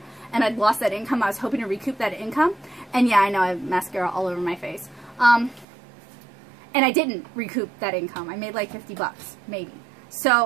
and I'd lost that income. I was hoping to recoup that income, and yeah, I know I have mascara all over my face. And I didn't recoup that income. I made like 50 bucks, maybe.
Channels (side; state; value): left; drops out; at 5.7 s